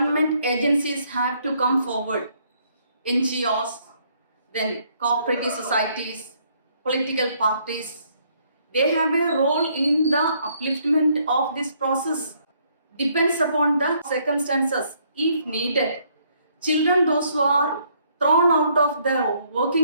agencies have to come forward. NGOs, then cooperative societies, political parties, they have a role in the upliftment of this process. Depends upon the circumstances. If needed, children, those who are thrown out of the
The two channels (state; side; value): inverted; both; correlation -0.68